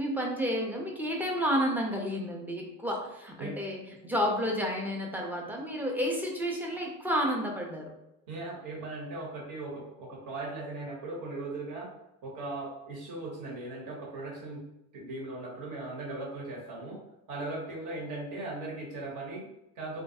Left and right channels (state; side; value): normal; both; correlation 0.39